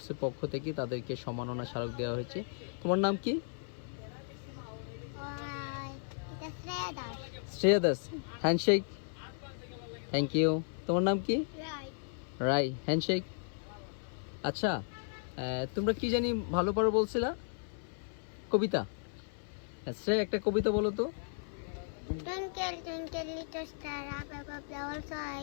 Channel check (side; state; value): right; silent; 54 dB below the other